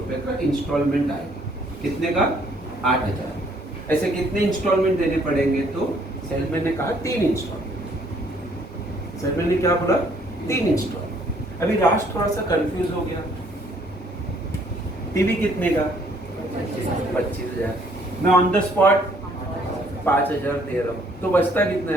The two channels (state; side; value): normal; both; correlation 0.64